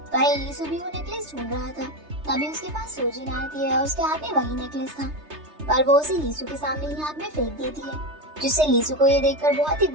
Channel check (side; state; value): left; late; 3.3 ms